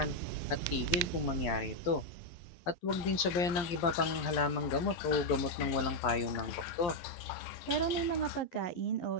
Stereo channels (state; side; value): late; right; 11 ms